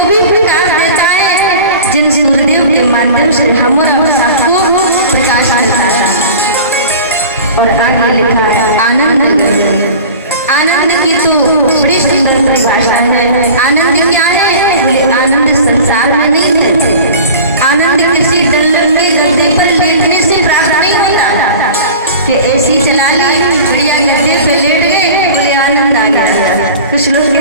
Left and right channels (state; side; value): inverted; both; correlation -0.38